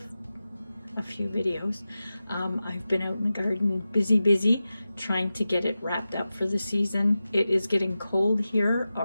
a few videos. I've been out in the garden busy trying to get it wrapped up for the season. It is getting cold here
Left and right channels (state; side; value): inverted; both; correlation -0.94